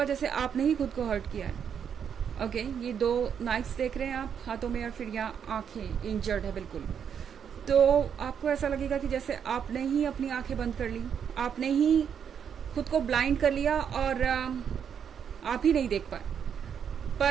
जैसे आपने ही खुद को हर्ट किया है। ओके, ये 2 नाइफ्स देख रहे हैं आप हाथों में और फिर यहाँ आंखें इंजर्ड है बिल्कुल। तो आपको ऐसा लगेगा कि जैसे आपने ही अपनी आंखें बंद कर ली, आपने ही खुद को ब्लाइंड कर लिया और आप ही नहीं देख पाए।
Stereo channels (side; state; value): left; quieter; 7.9 dB